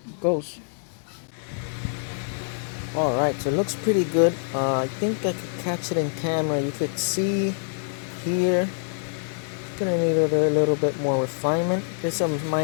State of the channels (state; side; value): silent; right; digital silence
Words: goes. Alright, so it looks pretty good. I think I could catch it in camera. You could see here, it's gonna need a little bit more refinement. There's some